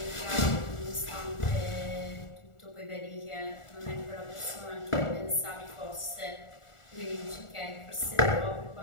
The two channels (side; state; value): right; late; 1.4 ms